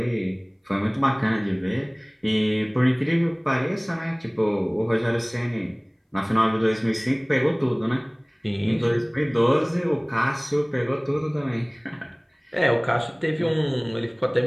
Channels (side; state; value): both; identical; correlation 1.00